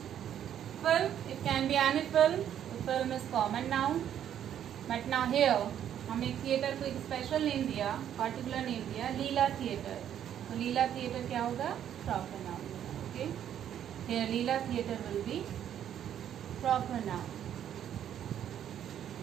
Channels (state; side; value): quieter; left; 10.1 dB